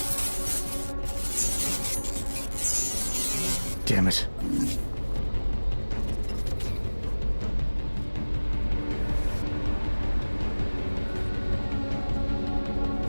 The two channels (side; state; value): both; inverted; correlation -1.00